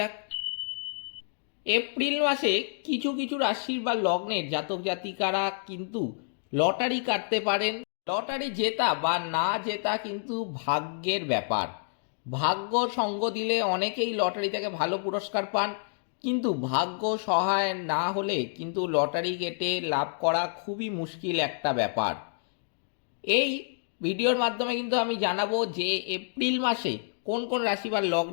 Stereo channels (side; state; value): right; silent; digital silence